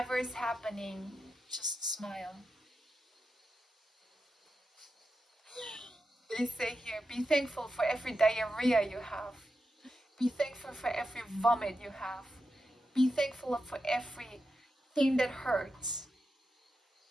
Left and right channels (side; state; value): both; normal; correlation 0.89